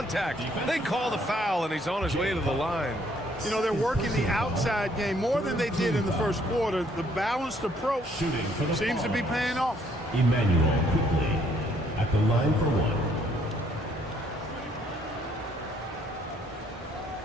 They call the foul, and he's on his way to the line. You know, they're working the outside game more than they did in the first quarter. The balanced approach seems to be paying off. Emmanuel quickly at the line for one.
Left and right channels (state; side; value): normal; both; correlation 0.65